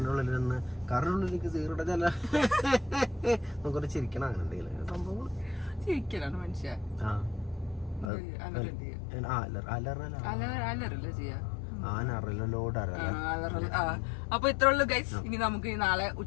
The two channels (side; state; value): right; drops out; at 8.1 s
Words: ഉള്ളിൽ നിന്ന് കാറിനുള്ളിലേക്ക് സീറോടെ ചില നമുക്കൊരു ചിരിക്കണം. അങ്ങനെ എന്തെങ്കിലും സംഭവം ചിരിക്കലാണ് മനുഷ്യ. അലറല്ല ചെയ്യാ. അപ്പൊ ഇത്ര ഉള്ളു ഗൈസ്. ഇനി നമുക്ക് നാളെ